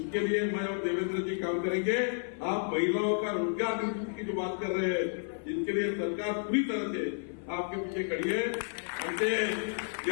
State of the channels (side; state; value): right; silent; 57 dB below the other